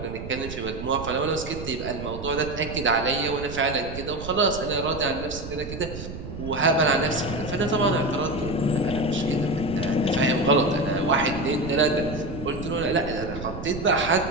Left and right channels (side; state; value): right; noise; rumble, 10 dB below the sound